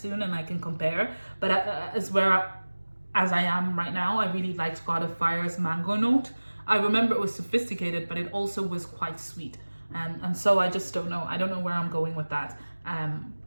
and I can compare. But as I am right now, I really liked God of Fire's mango note. I remember it was sophisticated, but it also was quite sweet. And so I just don't know. I don't know where I'm going with that.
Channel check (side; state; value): both; inverted; correlation -1.00